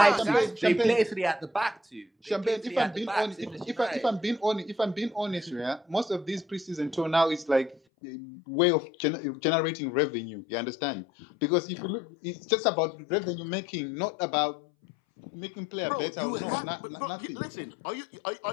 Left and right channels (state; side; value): drops out; right; at 7.8 s